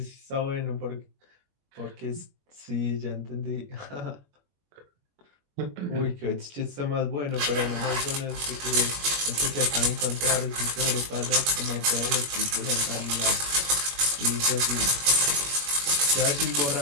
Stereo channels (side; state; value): left; late; 21 ms